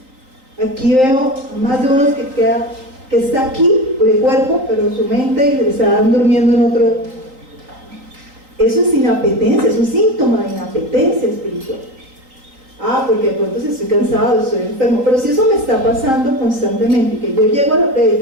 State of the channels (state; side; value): late; left; 3.8 ms